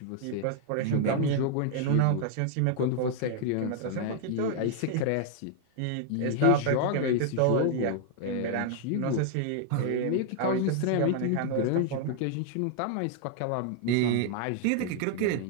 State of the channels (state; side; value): different; both; correlation 0.00